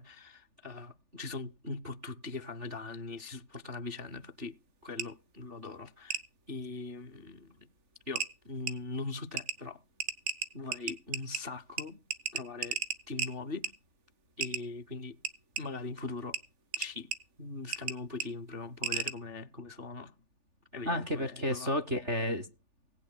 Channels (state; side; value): late; left; 3.4 ms